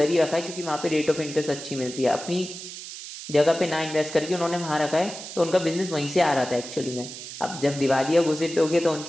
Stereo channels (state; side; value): noise; right; hiss, 11 dB below the sound